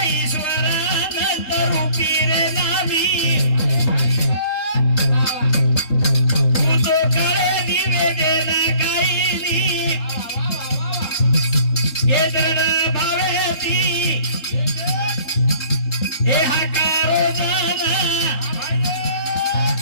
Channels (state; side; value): late; right; 3.8 ms